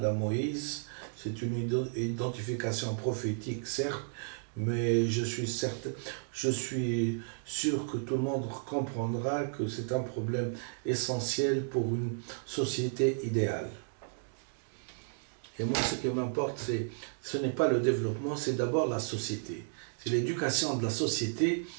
Moïse. C'est une identification prophétique, certes, mais je suis sûr que tout le monde comprendra que c'est un problème essentiel pour une société idéale. Et moi, ce qui m'importe, ce n'est pas le développement, c'est d'abord la société. C'est l'éducation de la société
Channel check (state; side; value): silent; left; digital silence